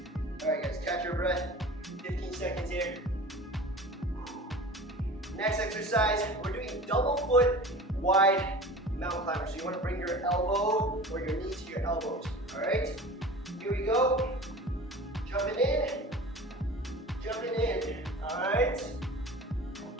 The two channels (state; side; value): normal; both; correlation 0.38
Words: All right, guys, catch your breath. 15 seconds here. Next exercise, we're doing double foot wide mountain climber. So you want to bring your elbow or your knee to your elbows. All right? Here we go. Jumping in. Jumping in. All right?